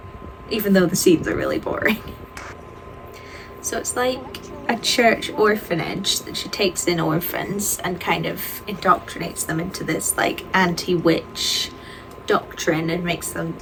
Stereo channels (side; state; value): both; identical; correlation 1.00